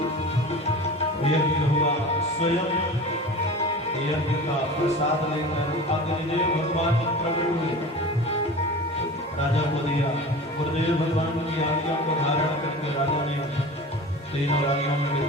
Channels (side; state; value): both; normal; correlation 0.35